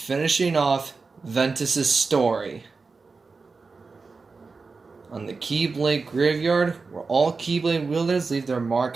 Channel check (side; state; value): left; quieter; 4.3 dB